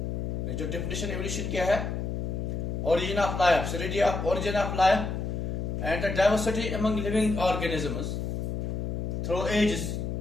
जो definition evolution क्या है? Origin of life, study of origin of life and the diversity among living organisms through ages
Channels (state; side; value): noise; left; hum, 2 dB below the sound